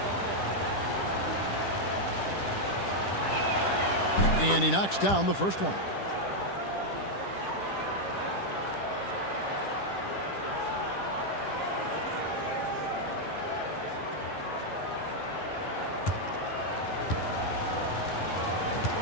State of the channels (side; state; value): right; late; 10 ms